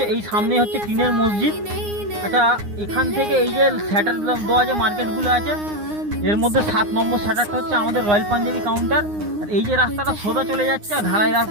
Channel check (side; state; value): left; late; 9.7 ms